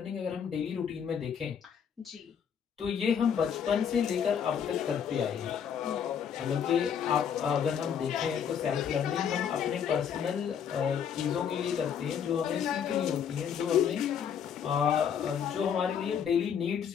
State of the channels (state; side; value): quieter; right; 7.9 dB